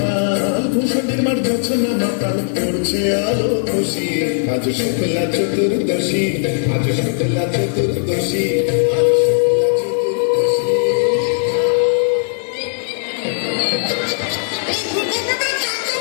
ভূষণের মার যাচ্ছে না মাতাল পড়ছে আলো খুশি আজ শুক্লা চতুর্দশী আজ শুক্লা চতুর্দশী আজ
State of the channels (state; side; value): silent; right; digital silence